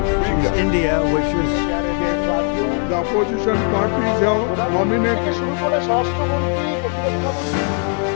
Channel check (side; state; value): right; quieter; 38.4 dB